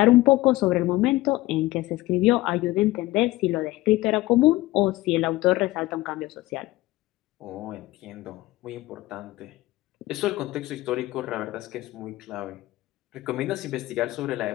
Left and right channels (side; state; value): right; quieter; 18.3 dB